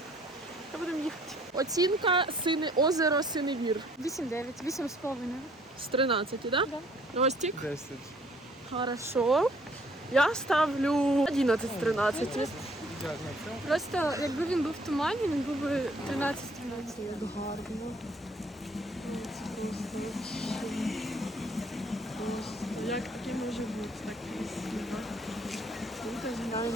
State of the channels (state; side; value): normal; both; correlation 0.61